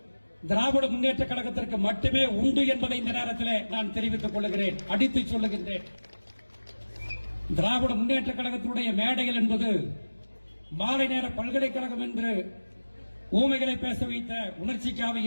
திராவிட முன்னேற்ற கழகத்திற்கு மட்டுமே உண்டு என்பதை இந்த நேரத்தில் நான் தெரிவித்துக் கொள்கிறேன், அடித்து சொல்லுகின்றேன். திராவிட முன்னேற்ற கழகத்தினுடைய மேடைகள் என்பது மாலை நேர பல்கலைக்கழகம் என்று ஊமைகளை பேச வைத்த உணர்ச்சி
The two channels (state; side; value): inverted; both; correlation -1.00